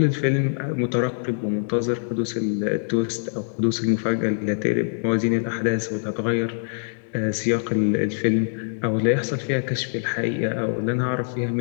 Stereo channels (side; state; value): right; silent; digital silence